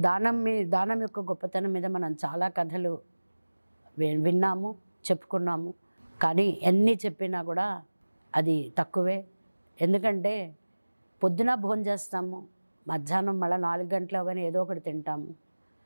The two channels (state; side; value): inverted; both; correlation -1.00